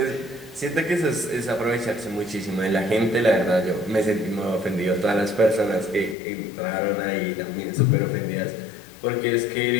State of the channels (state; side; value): drops out; right; at 6.2 s